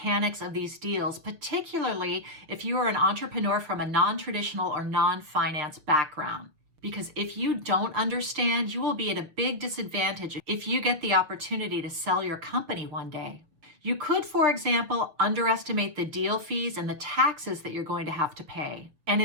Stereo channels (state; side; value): late; left; 6.5 ms